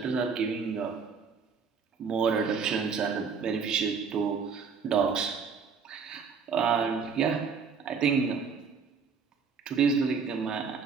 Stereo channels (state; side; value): quieter; left; 5.7 dB